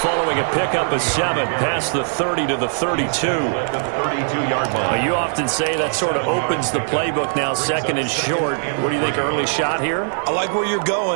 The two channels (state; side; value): silent; left; 66 dB below the other